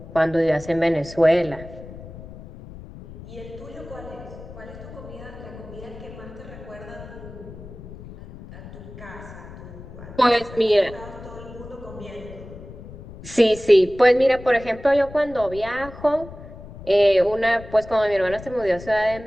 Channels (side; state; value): left; noise; rumble, 15 dB below the sound